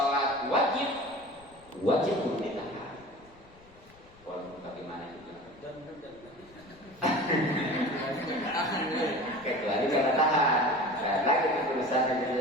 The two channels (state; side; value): noise; left; rumble, 26 dB below the sound